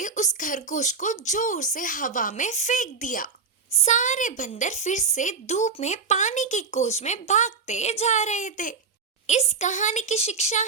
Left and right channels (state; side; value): quieter; left; 5.1 dB